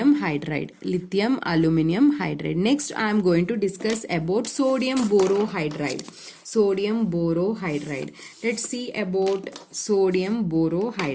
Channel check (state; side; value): identical; both; correlation 1.00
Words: hydride. Next I am going to discuss about sodium borohydride. Let's see about sodium